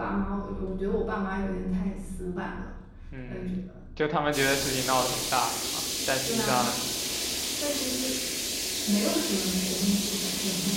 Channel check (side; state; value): both; identical; correlation 1.00